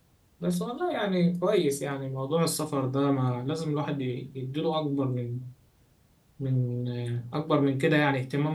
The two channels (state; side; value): identical; both; correlation 1.00